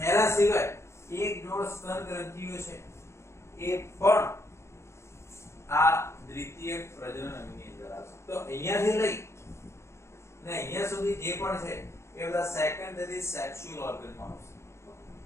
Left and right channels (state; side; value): late; right; 0.13 ms